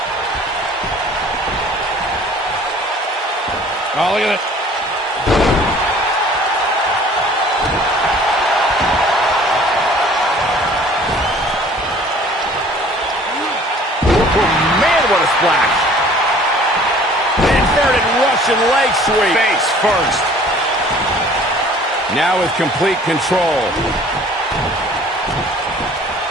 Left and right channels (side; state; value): both; normal; correlation 0.51